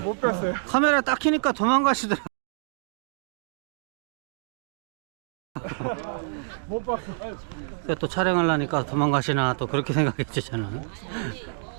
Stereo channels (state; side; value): silent; left; digital silence